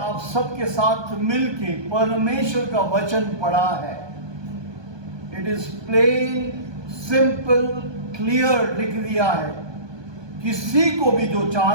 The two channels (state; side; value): late; left; 1.2 ms